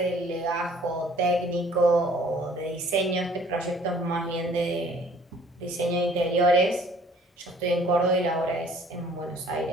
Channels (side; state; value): both; normal; correlation 0.55